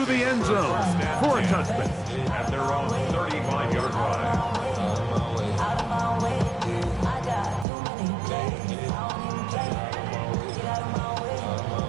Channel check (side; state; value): left; drops out; at 7.7 s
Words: the end zone for a touchback. At their own 35-yard line.